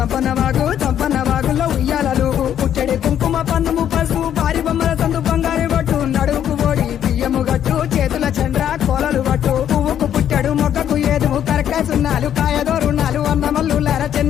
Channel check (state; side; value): quieter; right; 10.0 dB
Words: వాగుల్లో ఉయ్యాలలు పుట్టడి కుంకుమ పన్నుము పసుపు భారీ బొమ్మల సందు బంగారు పట్టు నడుముకు ఓడి బియ్యము గట్టు చేతుల చంద్ర కోలలు పట్టు పువ్వుకు పుట్టడు మొక్కకు ఏదుము కరకాసున్నాలు కాయదోరున్నాలు అన్నమల్లులార